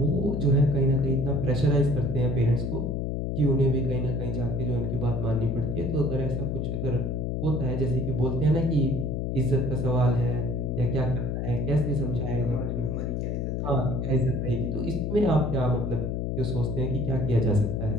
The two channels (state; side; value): noise; left; hum, 1 dB below the sound